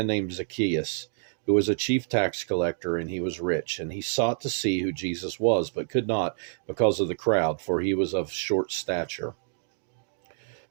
named Zacchaeus, who was a chief tax collector, and he was rich. And he sought to see who Jesus was, but could not because of the crowd, for he was of short stature.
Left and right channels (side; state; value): left; silent; digital silence